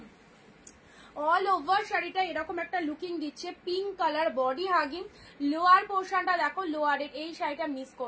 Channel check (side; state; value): both; identical; correlation 1.00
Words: অল ওভার শাড়িটা এরকম একটা লুকিং দিচ্ছে, pink colour body hugging. Lower পোর্শনটা দেখো, লোয়ারের এই শাড়িটা মিস